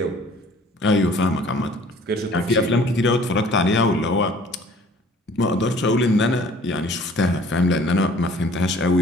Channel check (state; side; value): normal; both; correlation 0.53